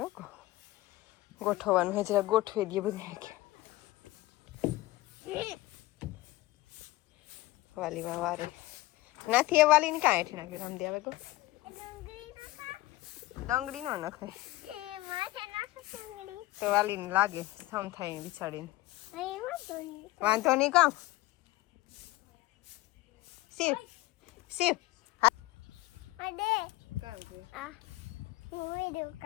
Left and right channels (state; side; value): quieter; right; 18.3 dB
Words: ગોઠવવાનું હે જરા ગોઠવી દઈએ બધું કે વાલીમાં વારે નાથી એ વાલી ને કાંઈ હેઠી નાખ્યું રામદી આવે તો ડંગળી નો નખે તો વાલી ને લાગે સમ થાય બિચાડીને વાંધો નહીં કામ શિવ શિવ